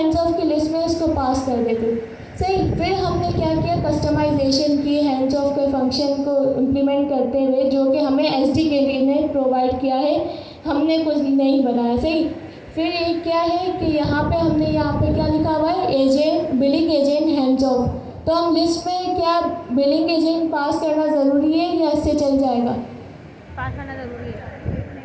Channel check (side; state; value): both; identical; correlation 1.00